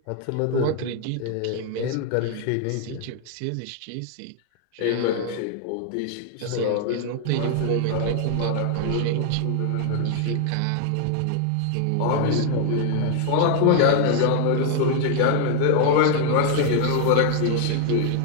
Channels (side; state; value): both; different; correlation 0.00